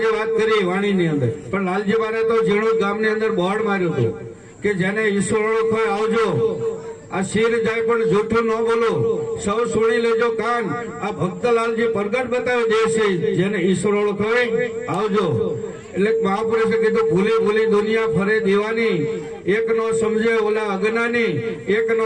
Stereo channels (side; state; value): both; identical; correlation 1.00